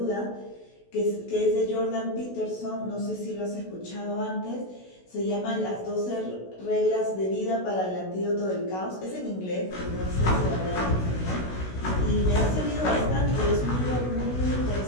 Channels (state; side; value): late; right; 16 ms